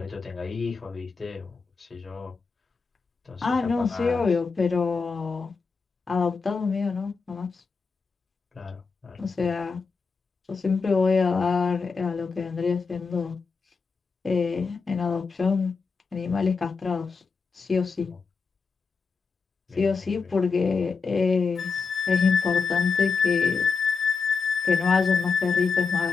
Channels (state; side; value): quieter; right; 5.0 dB